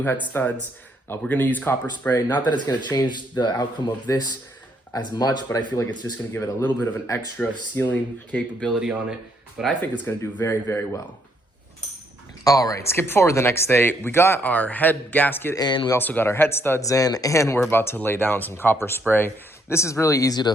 head studs, we're gonna use copper spray. Not that it's gonna change the outcome of this as much, but I feel like it's just gonna give it a little bit of an extra sealing capability on it. But I think it's gonna do very, very well. All right, skip forward the next day. We got our head gasket in, we also got our head studs in, and we're about to lay down some copper spray. This is really easy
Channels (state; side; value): normal; both; correlation 0.71